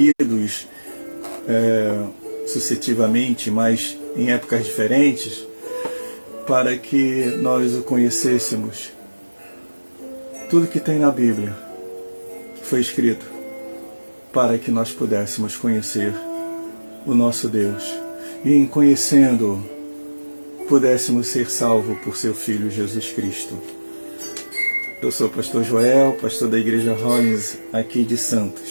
sucessivamente, mas em épocas diferentes, para que nós o conhecêssemos. Tudo que tem na Bíblia foi escrito para que nós pudéssemos conhecer o nosso Deus e, em conhecendo-o, pudéssemos ser salvos por seu Filho Jesus Cristo. Eu sou o pastor Joel, pastor da Igreja Rollins aqui de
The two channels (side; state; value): both; inverted; correlation -1.00